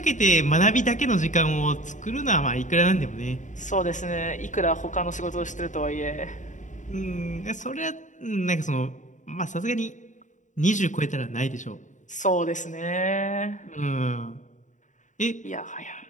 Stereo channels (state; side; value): late; right; 0.36 ms